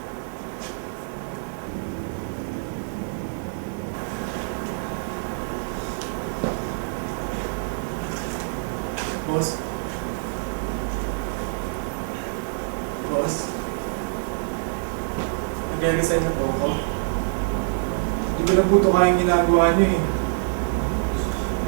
Boss? Boss? Nagre-resign na po ako. Hindi ko na po ito kayang ginagawa niyo eh.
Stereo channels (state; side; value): silent; left; digital silence